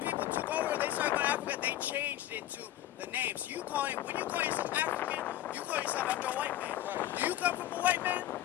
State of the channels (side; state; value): right; quieter; 13.3 dB